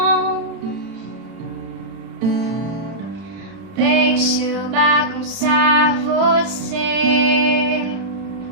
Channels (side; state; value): left; late; 31 ms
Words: Deixa eu bagunçar você,